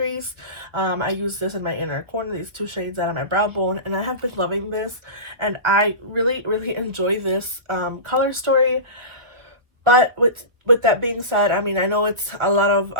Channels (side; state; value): left; late; 1.1 ms